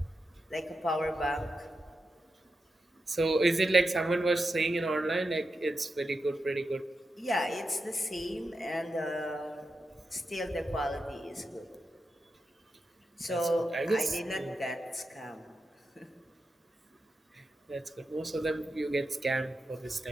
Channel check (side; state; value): both; normal; correlation 0.88